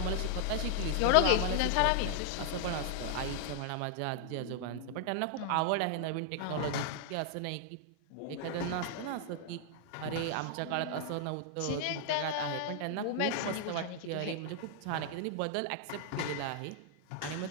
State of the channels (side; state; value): both; different; correlation 0.00